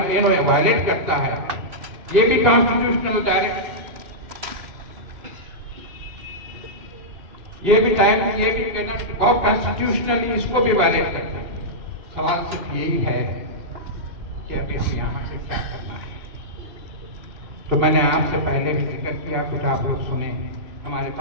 करता है। ये भी कॉन्स्टिट्यूशनल डायरेक्ट, ये भी कहना बहुत कॉन्स्टिट्यूशनली इसको भी वायलेट करता है। सवाल सिर्फ यही है कि अभी हम यहाँ से क्या करना है। तो मैंने आपसे पहले भी जिक्र किया, कुछ आप लोग सुने, हमारे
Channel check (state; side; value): late; left; 2.8 ms